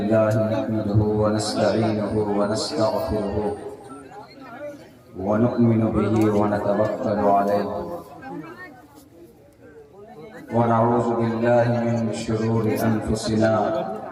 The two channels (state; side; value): identical; both; correlation 1.00